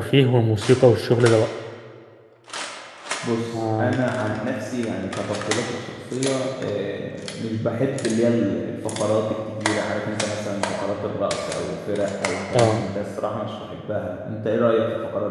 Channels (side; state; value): both; identical; correlation 1.00